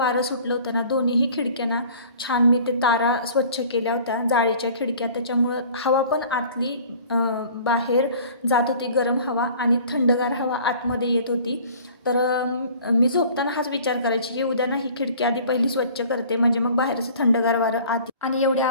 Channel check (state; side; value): inverted; both; correlation -0.48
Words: सुटलं होतं ना. दोन्हीही खिडक्यांना छान मी ते तारा स्वच्छ केल्या होत्या, जाळीच्या खिडक्या, त्याच्यामुळं हवा पण आतली बाहेर जात होती, गरम हवा, आणि थंडगार हवा आतमध्ये येत होती. तर मी झोपताना हाच विचार करायची की उद्या ना ही खिडकी आधी पहिली स्वच्छ करते, म्हणजे मग बाहेरचं थंडगार वारं आत. आणि एवढे